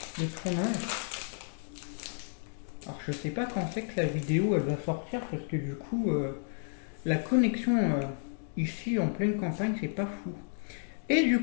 de tournage. Alors je sais pas quand c'est que la vidéo elle va sortir parce que du coup la connexion ici en pleine campagne c'est pas fou. Et du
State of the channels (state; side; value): silent; right; digital silence